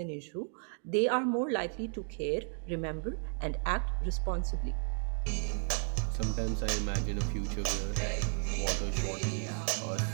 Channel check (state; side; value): silent; left; 55 dB below the other